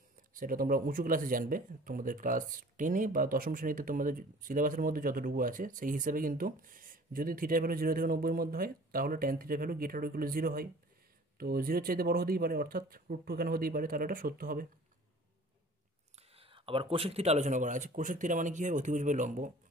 সেটা তোমরা উঁচু ক্লাসে জানবে, তোমাদের ক্লাস 10-এ বা 10ম শ্রেণীতে তোমাদের সিলেবাসের মধ্যে যতটুকু আছে সেই হিসাবে। কিন্তু যদি থিটা ভ্যালু 0 থেকে 90-এর মধ্যে হয়, তাহলে tan theta value greater or equal to 0 হয়। তো 0-এর চাইতে বড় হতেই পারে, অর্থাৎ √2 এখানে হতেই পারে, তাহলে এটা সত্য হবে। আবার কোসেক থিটা আলোচনা করা আছে। কোসেক থিটা মানে কি হয়? অতিভুজ বাই লম্ব।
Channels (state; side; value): normal; both; correlation 0.47